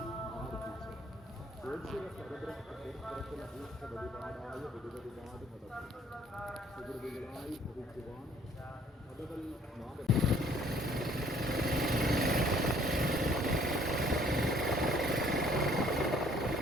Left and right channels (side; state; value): both; normal; correlation 0.60